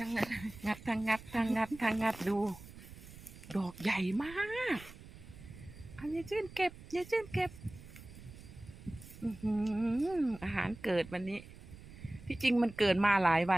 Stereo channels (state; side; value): noise; right; rumble, 17 dB below the sound